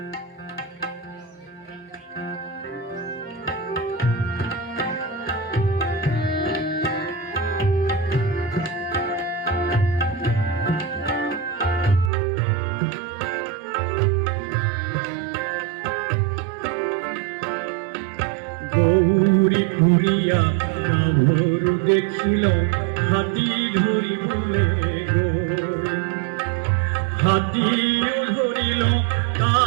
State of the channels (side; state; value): left; drops out; at 12.1 s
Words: গৌরী ঘুরিয়া গাভরু দেখিল হাতী ধরিবলে গো হাতী ধরিল